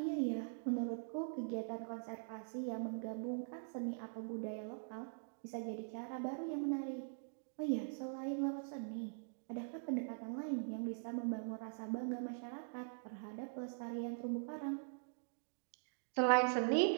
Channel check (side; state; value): left; silent; digital silence